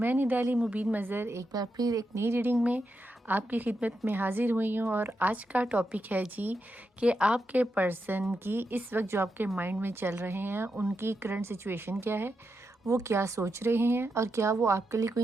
निदाली मुबीन मज़र एक बार फिर एक नई रीडिंग में आपकी खिदमत में हाज़िर हुई हूँ। और आज का टॉपिक है जी कि आपके पर्सन की इस वक्त जो आपके माइंड में चल रहे हैं उनकी करंट सिचुएशन क्या है, वो क्या सोच रहे हैं और क्या वो आपके लिए कोई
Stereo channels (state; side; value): normal; both; correlation 0.86